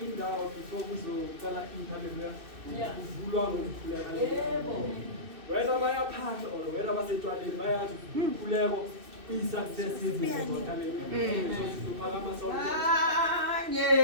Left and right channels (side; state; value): left; late; 2.6 ms